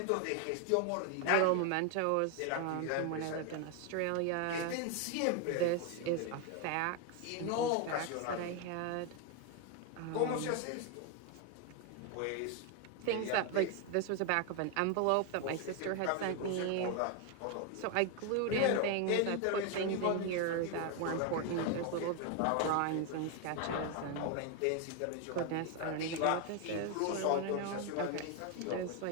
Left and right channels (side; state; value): both; different; correlation 0.01